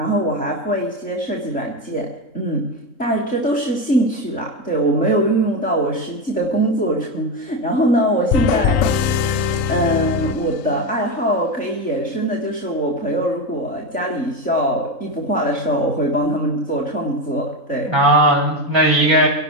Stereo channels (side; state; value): right; late; 3.8 ms